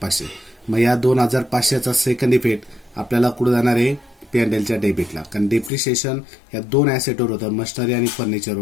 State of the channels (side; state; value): right; drops out; at 5.7 s